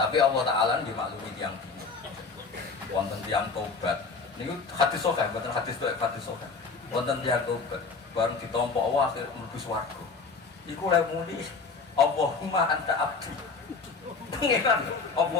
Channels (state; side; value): quieter; right; 4.5 dB